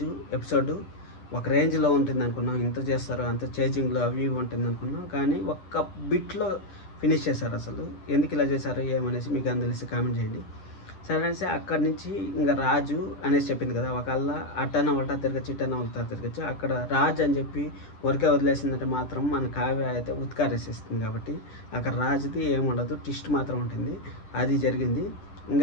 ఎపిసోడ్ ఒక రేంజ్లో ఉంటుంది అనుకున్నాం, ఇంత చేస్తారు, అంత చేంజింగ్లో అవి ఉంటుంది అనుకున్నాం, కానీ ఒక్క బిట్లో ఫినిష్ చేశారు. అసలు ఎందుకు ఇలా చేశారు ఏమనేసి మీకు అని తెలిసి కామెంట్ చేయండి. సరే అనేసి అక్కడి నుంచి ఇంకా రాజు అనేసి చెప్పింది కదా, ఒకళ్ళ అట్టన ఉల్టా తిరగచ్చు, ఇట్టన ఉల్టా తిరగచ్చు. అక్కడ రాజు అని చెప్పి ఊరికే వదిలేసిందంటే మాత్రం మన కావ్య అయితే ఉత్కారేసేస్తుంది. కాబట్టి అక్కడ రాజుది ఏముండదు, ట్విస్ట్ మాత్రం ఉంటుంది. అది జరిగింది.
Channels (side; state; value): right; late; 10 ms